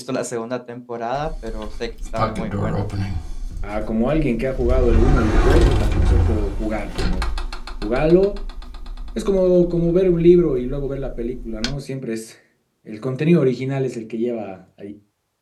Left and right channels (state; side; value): identical; both; correlation 1.00